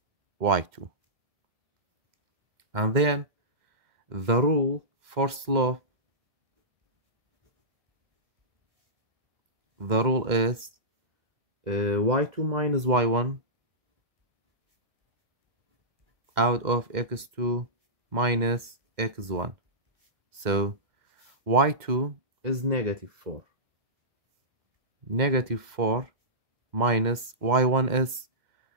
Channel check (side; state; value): left; late; 2.1 ms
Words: y2. And then the rule for slope, the rule is y2 minus y1 out of x2 minus x1. So y2 is negative 4. Negative 4 minus y1 is